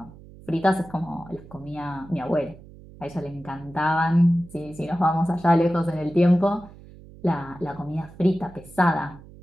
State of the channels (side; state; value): right; noise; hum, 20 dB below the sound